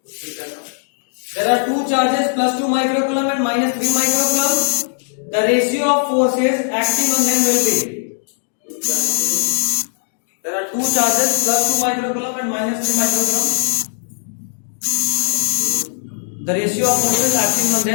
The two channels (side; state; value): right; silent; digital silence